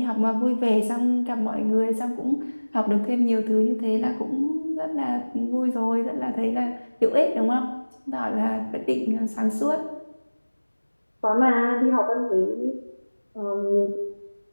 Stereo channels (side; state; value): both; inverted; correlation -1.00